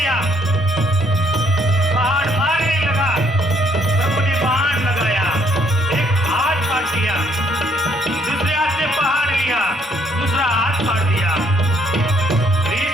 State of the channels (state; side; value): normal; both; correlation 0.67